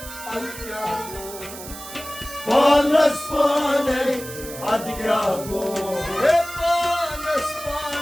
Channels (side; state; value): right; noise; hiss, 13 dB below the sound